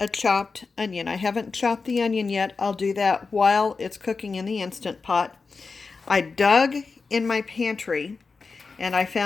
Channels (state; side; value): quieter; right; 4.5 dB